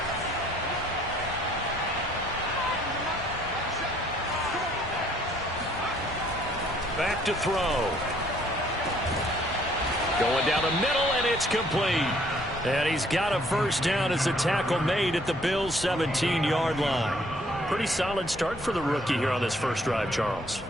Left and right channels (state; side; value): normal; both; correlation 0.63